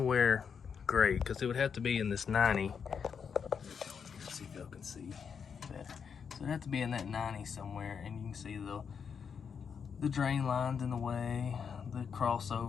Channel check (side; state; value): right; quieter; 6.6 dB